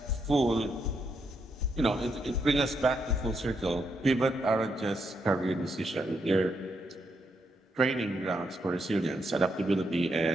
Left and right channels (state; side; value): normal; both; correlation 0.79